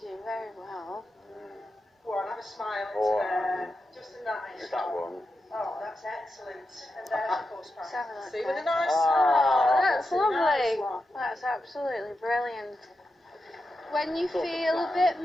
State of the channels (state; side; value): normal; both; correlation 0.89